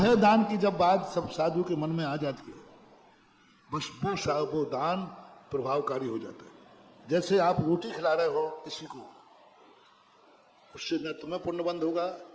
दान की जब बात सब साधु के मन में आ जाती है, बस वो दान प्रभावकारी हो जाता है। जैसे आप रोटी खिला रहे हो किसी को, उससे न तुम्हें पुण्य बंद होगा,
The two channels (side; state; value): both; identical; correlation 1.00